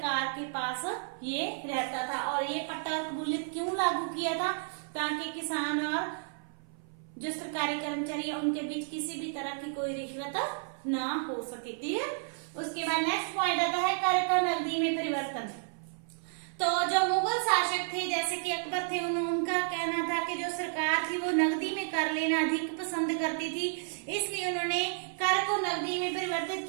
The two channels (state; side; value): silent; left; 57 dB below the other